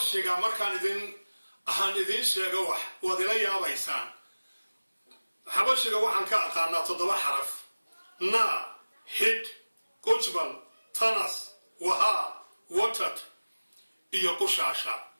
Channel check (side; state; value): both; inverted; correlation -1.00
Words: مركان إذن شيغا ودلا يابيسان حبشيغا وحن كأقانا تضبع حرف نا هيد كوجبل تنس وها وتت إيا قشاشا